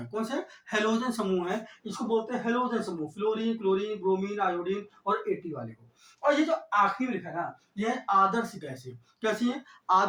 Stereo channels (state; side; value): identical; both; correlation 1.00